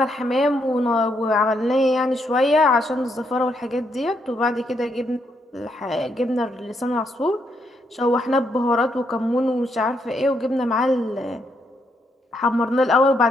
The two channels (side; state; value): both; normal; correlation 0.76